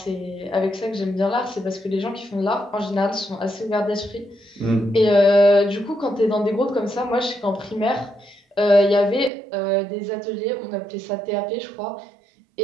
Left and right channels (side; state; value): left; drops out; at 9.3 s